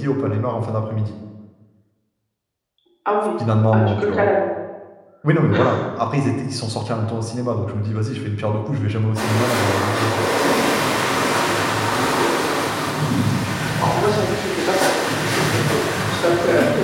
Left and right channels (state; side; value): identical; both; correlation 1.00